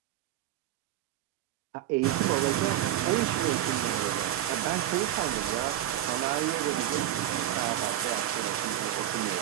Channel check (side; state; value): left; quieter; 12.2 dB